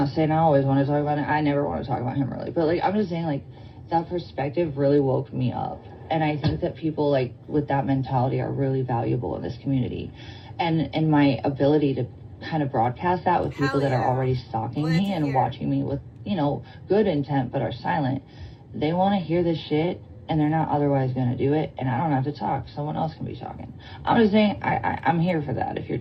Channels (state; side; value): identical; both; correlation 1.00